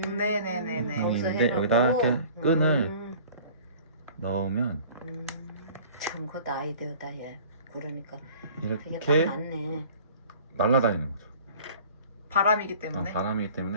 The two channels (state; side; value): inverted; both; correlation -0.47